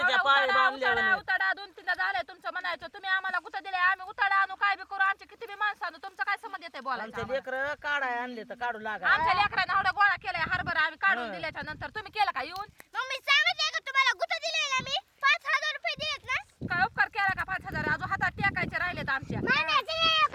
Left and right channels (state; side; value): identical; both; correlation 1.00